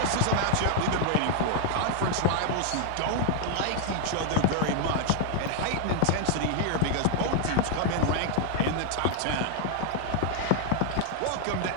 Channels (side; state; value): both; different; correlation 0.00